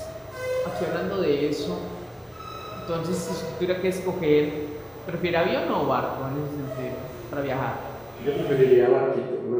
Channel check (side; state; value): both; identical; correlation 1.00